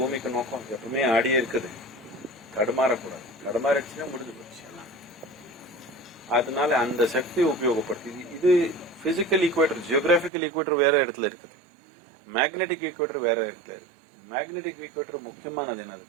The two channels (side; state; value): left; drops out; at 10.3 s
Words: நோக்கம். எப்பவுமே ஆடியே இருக்குது, தடுமாறக்கூடாது. தடுமாறிடுச்சுன்னா முடிஞ்சு போச்சு. அதனால அந்த சக்தி உபயோகப்படுத்தி இது பிசிக்கல் ஈக்குவேட்டர், ஜியோகிராபிக்கல் ஈக்குவேட்டர் வேற இடத்துல இருக்கு, மேக்னெட்டிக் ஈக்குவேட்டர் வேற இடத்துல இருக்கு. மேக்னெட்டிக் ஈக்குவேட்டர் முக்கியமானது